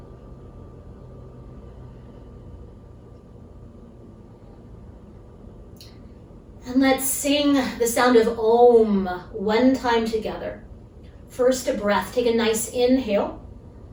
And let's sing the sound of Om one time together. First a breath. Take a nice inhale.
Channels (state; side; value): identical; both; correlation 1.00